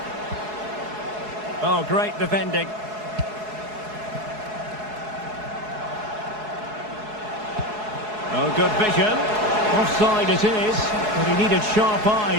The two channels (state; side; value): late; left; 4.7 ms